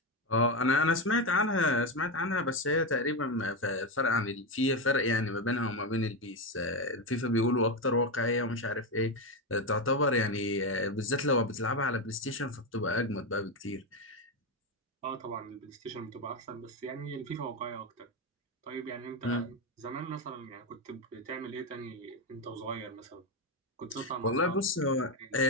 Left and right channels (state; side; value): normal; both; correlation 0.11